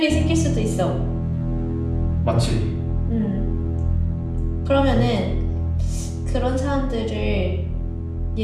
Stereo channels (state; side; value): identical; both; correlation 1.00